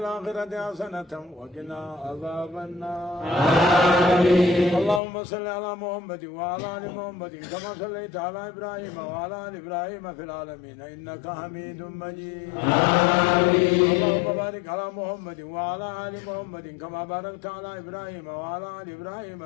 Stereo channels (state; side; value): drops out; right; at 5.0 s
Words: حسنة وقنا عذاب النار. اللهم صل على محمد وعلى آل محمد كما صليت على إبراهيم وعلى آل إبراهيم في العالمين إنك حميد مجيد. اللهم بارك على محمد وعلى آل محمد كما باركت على إبراهيم وعلى آل إبراهيم